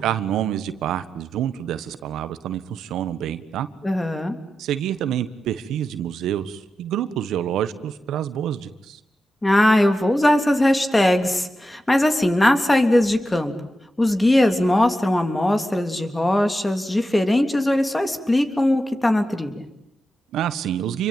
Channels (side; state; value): both; normal; correlation 0.89